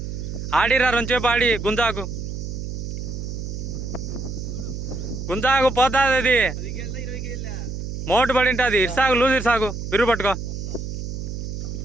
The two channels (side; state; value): right; noise; hum, 6 dB below the sound